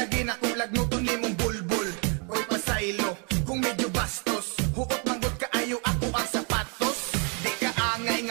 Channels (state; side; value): quieter; left; 36.2 dB